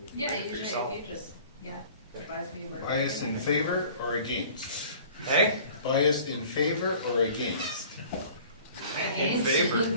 you can yeah, print it for usually yourself. if you just, advise me where. Bias in favor or against? Hey, Bias in favor or against? in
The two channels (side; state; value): both; inverted; correlation -0.48